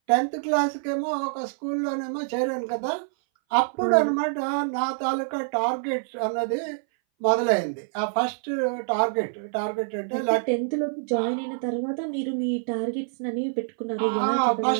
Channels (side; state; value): left; silent; 59 dB below the other